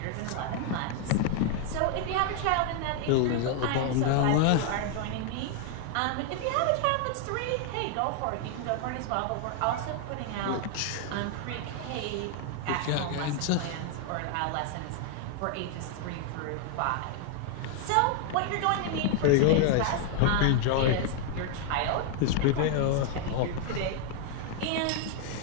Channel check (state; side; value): different; both; correlation 0.00